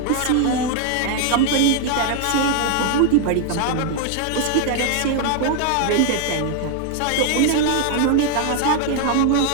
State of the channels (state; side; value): different; both; correlation 0.00